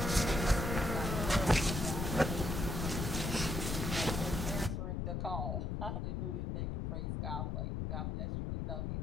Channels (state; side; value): noise; left; rumble, 1 dB below the sound